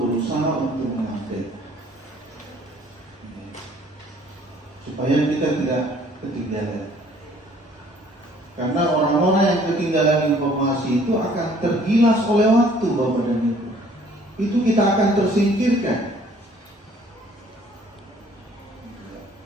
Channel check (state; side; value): normal; both; correlation 0.57